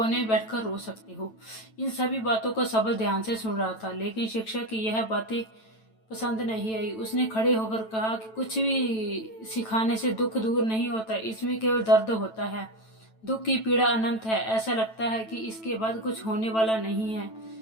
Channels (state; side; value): late; right; 9.1 ms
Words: में बैठकर रो सकते हो। इन सभी बातों को सबल ध्यान से सुन रहा था, लेकिन शिक्षक की यह बातें पसंद नहीं आई। उसने खड़े होकर कहा कि कुछ भी सिखाने से दुख दूर नहीं होता, इसमें केवल दर्द होता है। दुख की पीड़ा अनंत है। ऐसा लगता है कि इसके बाद कुछ होने वाला नहीं है।